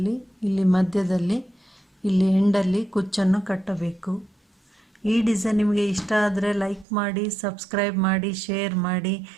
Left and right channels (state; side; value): drops out; left; at 6.9 s